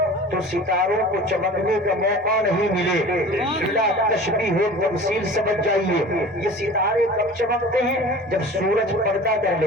تو ستاروں کو چمکنے کا موقع نہیں ملے. بلا تشبیہ و تمثیل سمجھ جائیے, یہ ستارے کب چمکتے ہیں؟ جب سورج پردہ کر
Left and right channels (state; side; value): normal; both; correlation 0.40